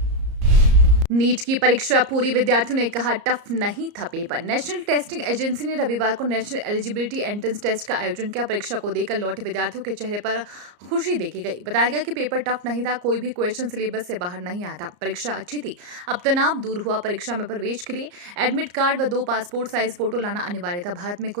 नीट की परीक्षा पूरी, विद्यार्थियों ने कहा टफ नहीं था पेपर। नेशनल टेस्टिंग एजेंसी ने रविवार को नेशनल एलिजिबिलिटी एंट्रेंस टेस्ट का आयोजन किया। परीक्षा को देकर लौटे विद्यार्थियों के चेहरे पर खुशी देखी गई। बताया गया कि पेपर टफ नहीं था, कोई भी क्वेश्चन सिलेबस से बाहर नहीं आया था। परीक्षा अच्छी थी, अब तनाव दूर हुआ। परीक्षा में प्रवेश के लिए एडमिट कार्ड व 2 पासपोर्ट साइज फोटो लाना अनिवार्य था। भारत में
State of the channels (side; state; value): left; late; 34 ms